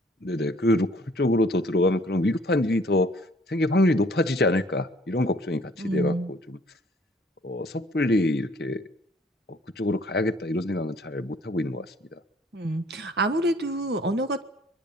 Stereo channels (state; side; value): normal; both; correlation 0.58